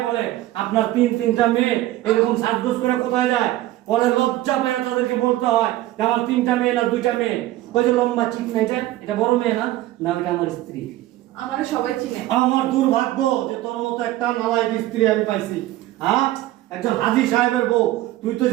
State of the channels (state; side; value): quieter; left; 15.6 dB